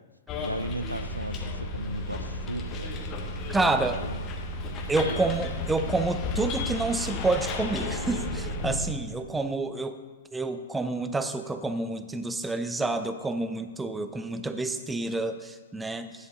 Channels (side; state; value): both; normal; correlation 0.47